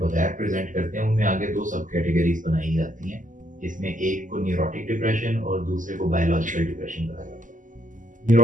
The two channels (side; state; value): left; late; 0.38 ms